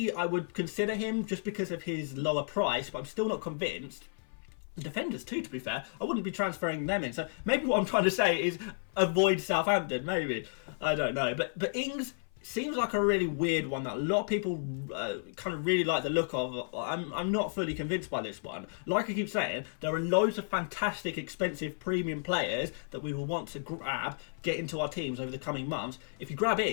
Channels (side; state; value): right; silent; 56 dB below the other